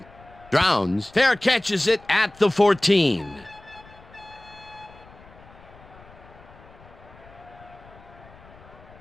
Drowns fair catches it at the 14.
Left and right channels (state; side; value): noise; left; rumble, 23 dB below the sound